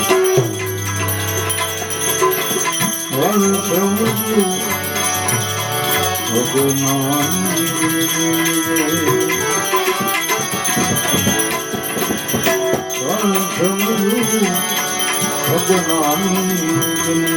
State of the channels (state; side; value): identical; both; correlation 1.00